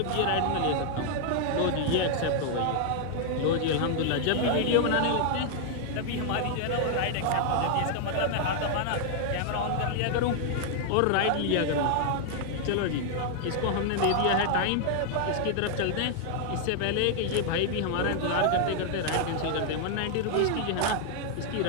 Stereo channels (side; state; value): both; different; correlation 0.00